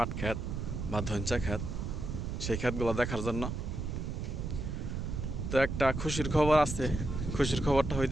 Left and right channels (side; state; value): right; noise; rumble, 4 dB below the sound